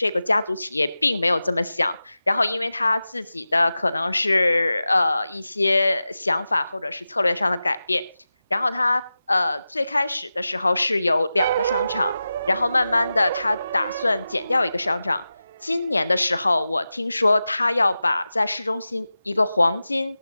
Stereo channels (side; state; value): both; inverted; correlation -0.94